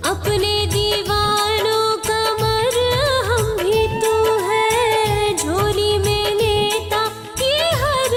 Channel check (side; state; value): both; identical; correlation 1.00